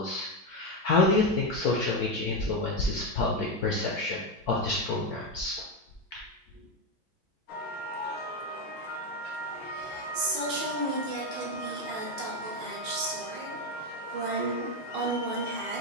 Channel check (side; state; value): both; normal; correlation 0.10